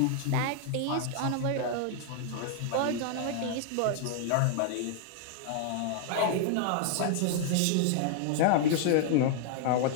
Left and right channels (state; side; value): different; both; correlation 0.00